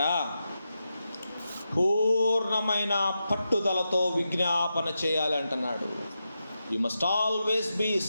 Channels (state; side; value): inverted; both; correlation -0.89